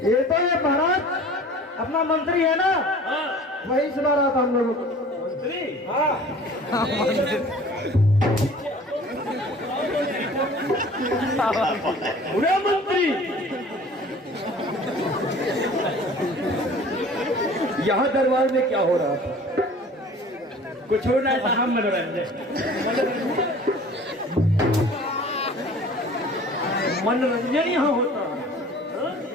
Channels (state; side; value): normal; both; correlation 0.46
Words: ये तो है महाराज अपना मंत्री है ना, हाँ, वही सुना रहा था हम लोगों को। मंत्री? हाँ पूरे मंत्री यहाँ दरबार में क्या हो रहा था? कुछ हो रहा था, हम मनोरंजन। मनोरंजन यहाँ होता है?